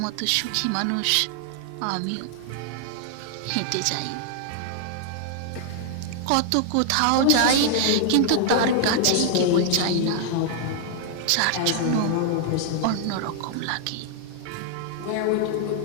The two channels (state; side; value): different; both; correlation 0.00